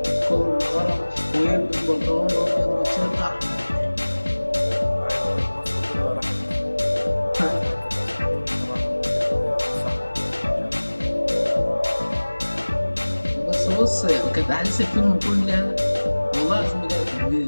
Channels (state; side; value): inverted; both; correlation -1.00